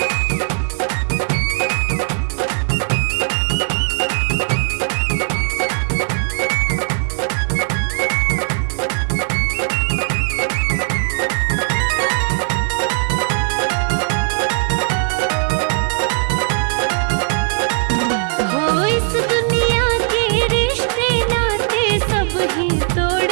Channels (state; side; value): silent; left; digital silence